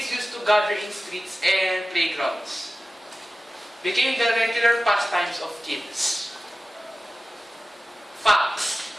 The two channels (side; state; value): both; normal; correlation 0.96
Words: used to gather in streets and playgrounds. Became the regular pastimes of kids. Facts.